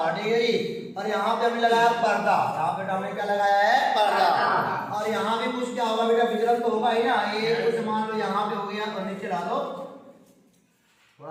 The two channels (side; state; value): both; identical; correlation 1.00